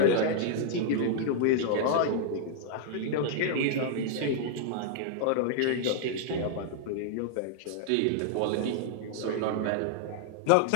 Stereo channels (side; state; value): both; different; correlation -0.01